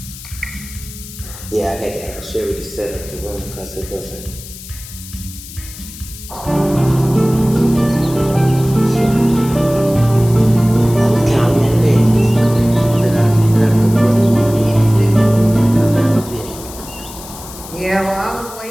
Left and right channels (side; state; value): left; noise; hiss, 15 dB below the sound